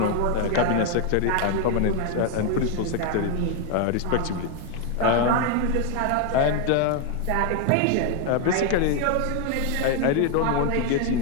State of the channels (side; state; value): both; different; correlation 0.01